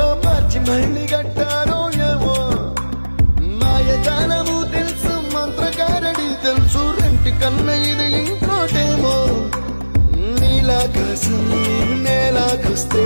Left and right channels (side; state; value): both; inverted; correlation -1.00